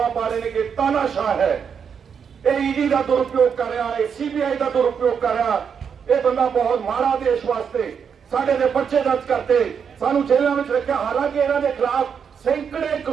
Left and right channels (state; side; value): quieter; left; 7.0 dB